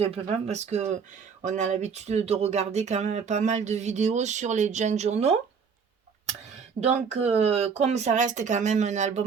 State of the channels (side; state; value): left; quieter; 6.1 dB